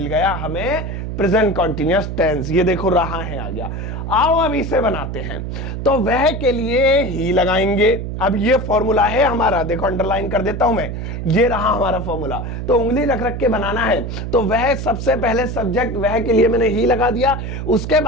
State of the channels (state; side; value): noise; right; hum, 5 dB below the sound